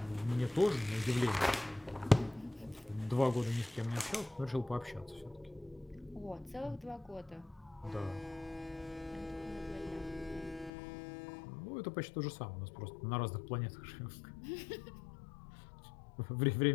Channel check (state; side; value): drops out; right; at 10.7 s